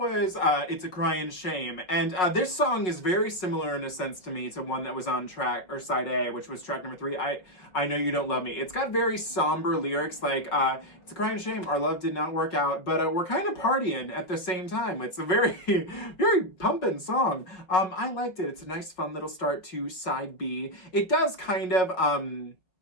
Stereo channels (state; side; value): late; right; 5.2 ms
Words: It's a Cryin' Shame, and this song is very similar in a sense to me to one that was on track, or side A, which was track number 3, I Know You Don't Love Me. It's got very somber lyrics like, it's a cryin' shame, our love did not work out, but we're kind of partying at the same time. It's a very, very pumping song. I liked it. It's a nice fun little start to side B. It does kind of, how